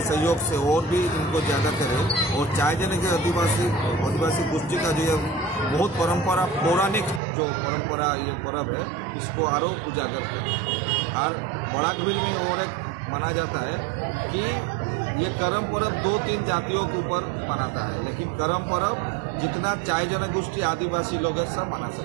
सहयोग से और भी इनको ज़्यादा करें और चाय जने के आदिवासी गोष्ठी का जो बहुत परंपरा पौराणिक जो परंपरा ये पर्व है इसको आरो उजागर करें। और बराकबिल में और एक माना जाता है कि ये करम पर्व 2-3 जातियों के ऊपर मनाता है, लेकिन करम पर्व जितना चाय जनगोष्ठी आदिवासी लोग हैं सब मना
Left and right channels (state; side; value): drops out; left; at 7.2 s